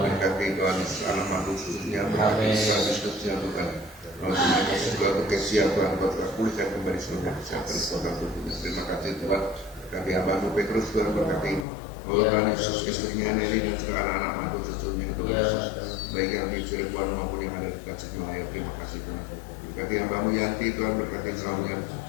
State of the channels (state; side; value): drops out; right; at 11.7 s